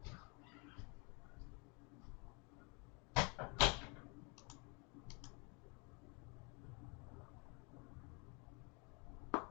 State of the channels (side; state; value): right; quieter; 32.2 dB